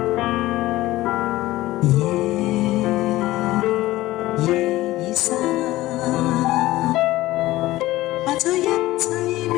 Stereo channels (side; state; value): right; quieter; 17.0 dB